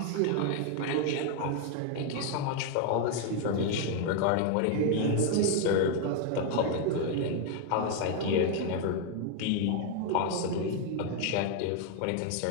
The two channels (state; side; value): different; both; correlation 0.01